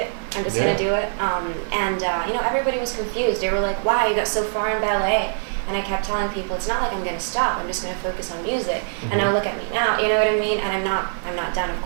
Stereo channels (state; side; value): silent; left; 63 dB below the other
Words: I'm just gonna do it. Everybody was confused. They were like, wow, you got so far in ballet. And I kept telling people, it's not like I'm gonna stop. I'm just gonna focus on music. And now look at me now. You know what I mean? And I'm not done, of